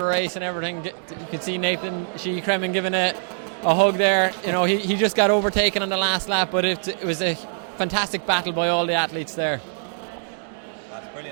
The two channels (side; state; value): left; silent; 63 dB below the other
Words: race and everything. You could see Nathan Sheehy-Cremen giving a hug there. You know, he just got overtaken on the last lap, but it was a fantastic battle by all the athletes there. That's